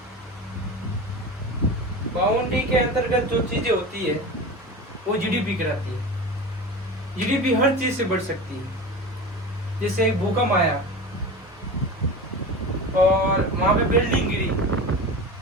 बाउंड्री के अंतर्गत जो चीजें होती है वो जीडीपी कहलाती है। जीडीपी हर चीज से बढ़ सकती है। जैसे एक भूकंप आया और वहां पे बिल्डिंग गिरी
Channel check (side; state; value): both; normal; correlation 0.30